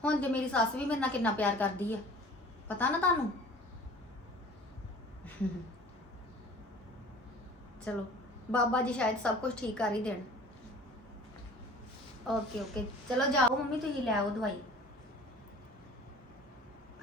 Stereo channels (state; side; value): normal; both; correlation 0.45